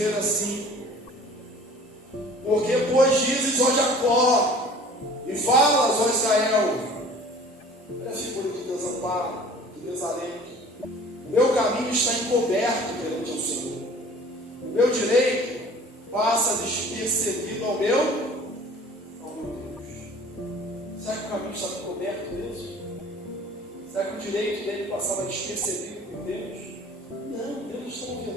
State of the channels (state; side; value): normal; both; correlation 0.47